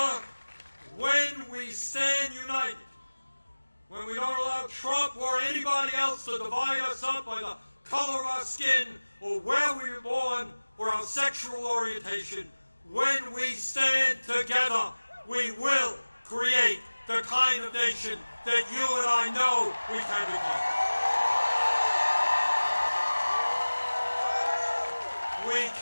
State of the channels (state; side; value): inverted; both; correlation -1.00